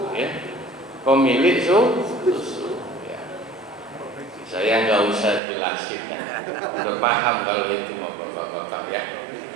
ya. Pemilik susu, ya. Saya nggak usah jelasin, ya. Udah paham kalau itu mau bapak-bapak, ya.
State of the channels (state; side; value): drops out; left; at 5.4 s